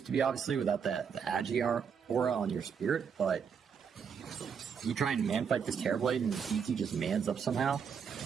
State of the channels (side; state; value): left; quieter; 6.8 dB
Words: to be, obviously, without the Agi aura on your spirit, but you try and man fight this Terrorblade and DT just mans up somehow.